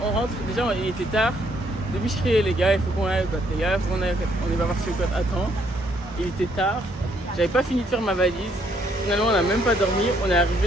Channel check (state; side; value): normal; both; correlation 0.69